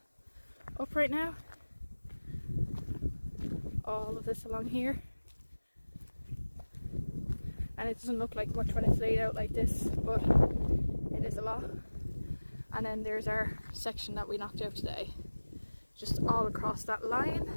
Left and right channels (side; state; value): both; inverted; correlation -1.00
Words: up right now. All of this along here. And it doesn't look like much when it's laid out like this, but it is a lot. And then there's our section that we knocked out today, just all across that